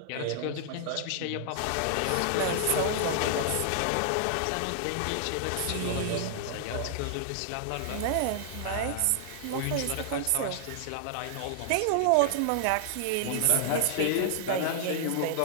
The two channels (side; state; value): both; different; correlation -0.01